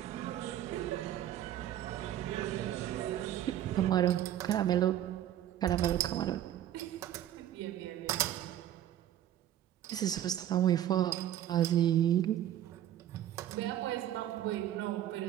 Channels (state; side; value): quieter; left; 11.7 dB